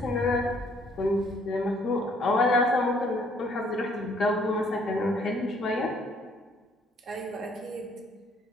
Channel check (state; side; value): normal; both; correlation 0.63